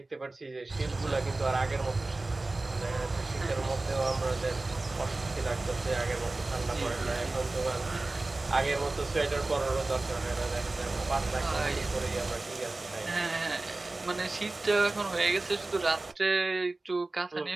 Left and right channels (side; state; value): left; quieter; 3.1 dB